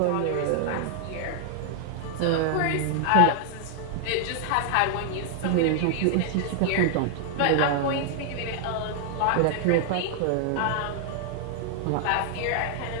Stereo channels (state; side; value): different; both; correlation 0.00